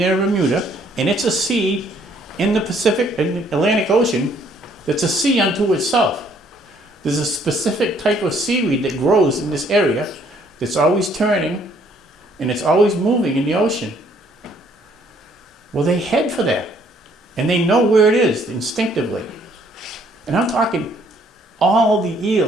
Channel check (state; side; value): normal; both; correlation 0.64